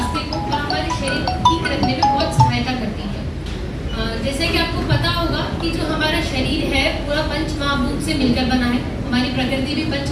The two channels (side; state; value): both; identical; correlation 1.00